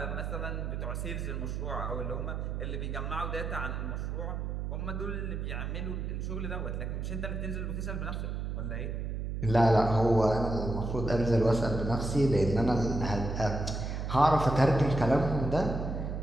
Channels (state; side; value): noise; right; hum, 3 dB below the sound